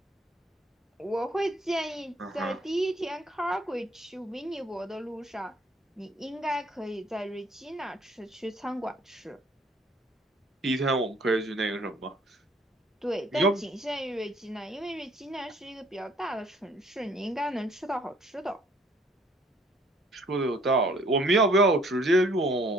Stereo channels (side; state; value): both; normal; correlation 0.61